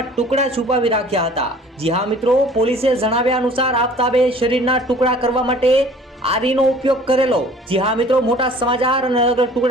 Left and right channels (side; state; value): both; normal; correlation 0.50